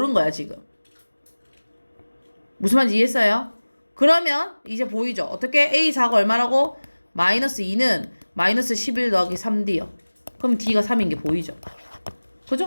거야 지금. 무슨 말인지 이해했어요? 그러면 이제 보이죠? 어떻게 A4가 얼마라고? 마이너스 2는 마이너스 11 더하기 3D요. 그럼 D가 3인 게 보이죠?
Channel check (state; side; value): inverted; both; correlation -1.00